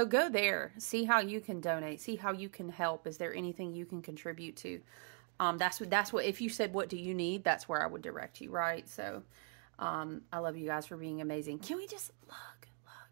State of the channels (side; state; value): left; quieter; 38.7 dB